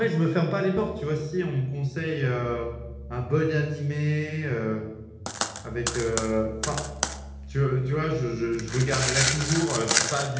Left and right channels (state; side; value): identical; both; correlation 1.00